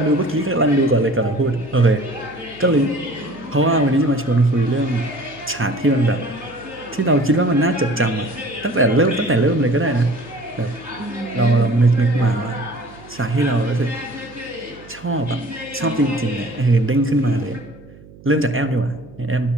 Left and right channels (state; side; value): noise; right; hum, 22 dB below the sound